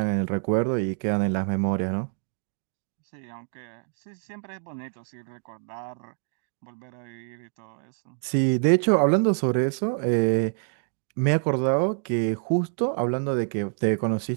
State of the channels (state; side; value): silent; left; digital silence